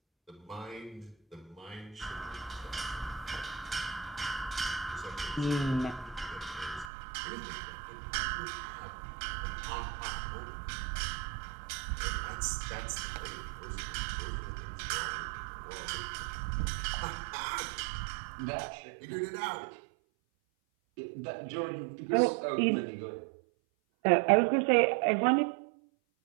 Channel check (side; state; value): left; drops out; at 6.9 s